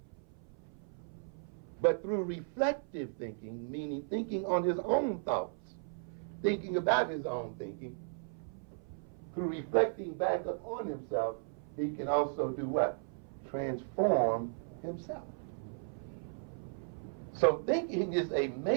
but through reflective thinking, meaning thinking on his own thoughts, thinking about his own thinking, through reflecting back upon himself, he can also do what? Transform himself. So thinking is a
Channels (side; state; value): left; silent; 54 dB below the other